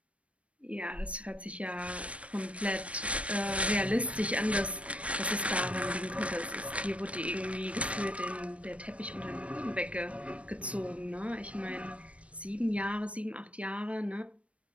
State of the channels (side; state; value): left; late; 0.063 ms